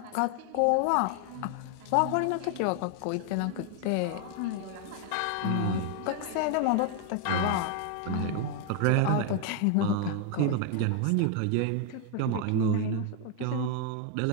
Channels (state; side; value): different; both; correlation 0.01